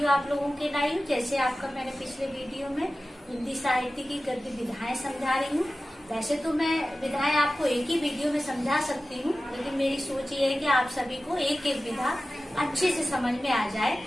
आप लोगों के लाई हूँ। जैसे आपका मैंने पिछले वीडियो में हिंदी साहित्य की गद्य विधाएं समझा रही हूँ। वैसे तो मैं विधाएं आपको एक ही वीडियो में समझा सकती हूँ, लेकिन मेरी सोच ये है कि आप सभी को एक एक विधा अच्छे से समझ में आ जाए।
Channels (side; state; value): both; normal; correlation 0.96